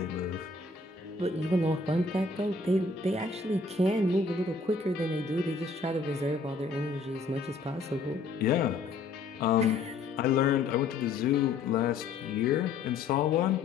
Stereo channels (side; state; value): right; quieter; 4.1 dB